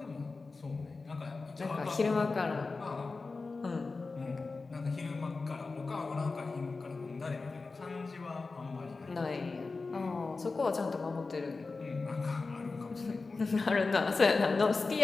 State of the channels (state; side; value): quieter; right; 3.9 dB